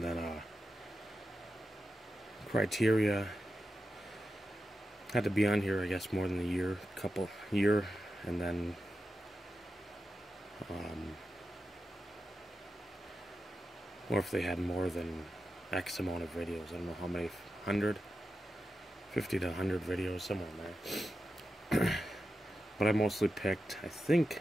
then criteria had to be on here, I guess, more than a year, and then or if they had more than X amount of videos. I don't know how many, 50 to 100 videos, somewhere in there. But I mostly picked, I think,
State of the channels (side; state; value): both; normal; correlation 0.90